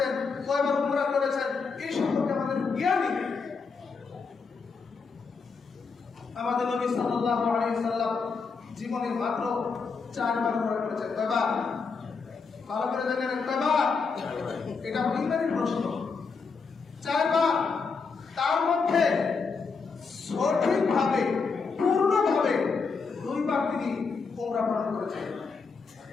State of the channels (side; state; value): right; quieter; 5.0 dB